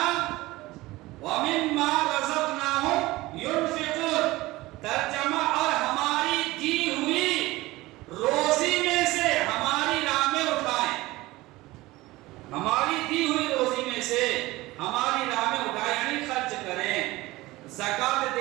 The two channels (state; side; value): quieter; left; 19.4 dB